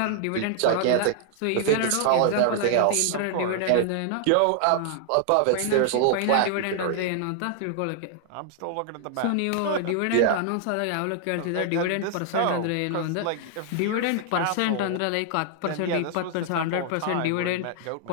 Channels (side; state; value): both; different; correlation 0.00